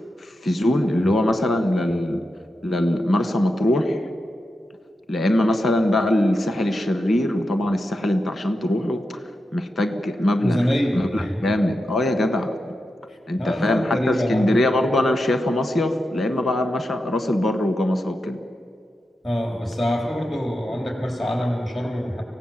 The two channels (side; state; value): both; normal; correlation 0.89